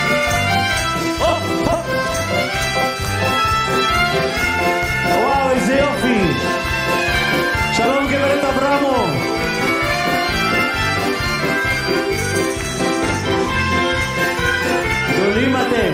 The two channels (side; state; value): both; identical; correlation 1.00